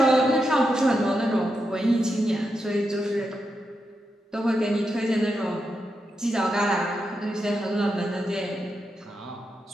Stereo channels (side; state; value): both; normal; correlation 0.86